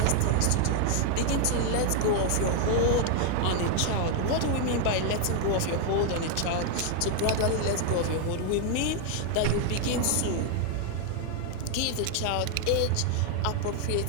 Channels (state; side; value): different; both; correlation 0.00